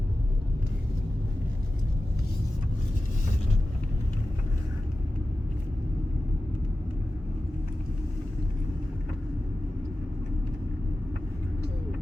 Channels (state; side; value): normal; both; correlation 0.94